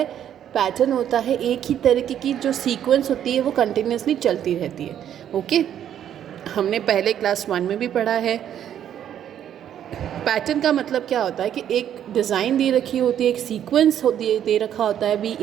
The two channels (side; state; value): left; quieter; 10.1 dB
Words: पैटर्न होता है एक ही तरीके की जो सीक्वेंस होती है वो कंटिन्यूसली चलती रहती है, ओके। हमने पहले क्लास 1 में भी पढ़ा है। पैटर्न का मतलब क्या होता है कि एक डिज़ाइन दे रखी होती है, एक सीक्वेंस दे रखा होता है, B